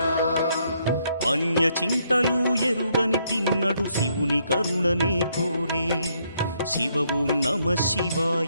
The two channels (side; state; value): both; inverted; correlation -0.73